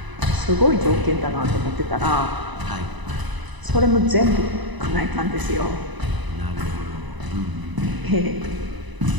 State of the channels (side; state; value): left; late; 1.0 ms